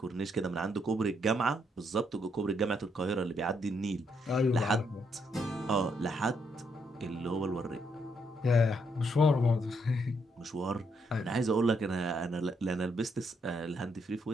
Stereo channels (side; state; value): both; normal; correlation 0.75